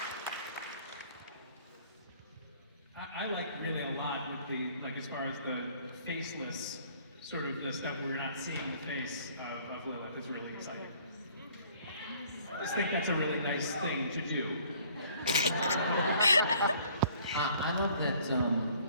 I like really a lot with the, like as far as the faceless, sort of the stuff where we're not seeing the face of Lilith is really exciting. I just think that's a really nice thing to do. I love that,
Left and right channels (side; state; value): both; inverted; correlation -0.58